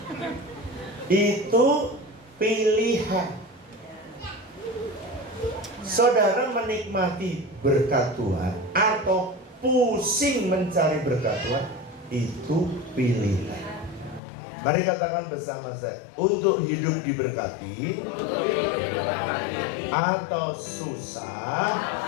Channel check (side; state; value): right; drops out; at 14.2 s